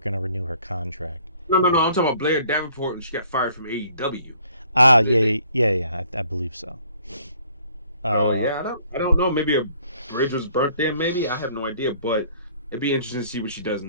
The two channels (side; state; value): both; inverted; correlation -0.60